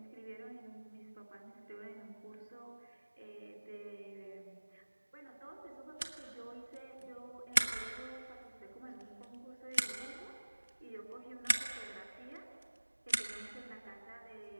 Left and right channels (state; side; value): inverted; both; correlation -1.00